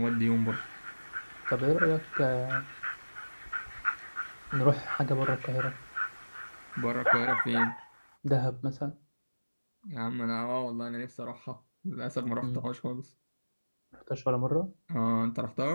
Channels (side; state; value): both; inverted; correlation -1.00